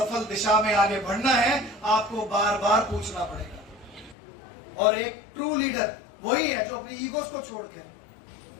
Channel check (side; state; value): right; drops out; at 4.2 s